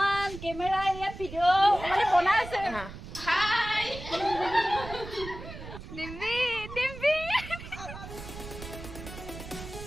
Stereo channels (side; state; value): right; noise; rumble, 12 dB below the sound